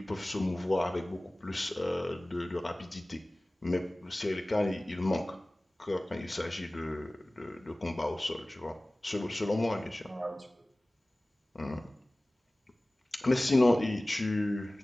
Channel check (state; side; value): normal; both; correlation 0.98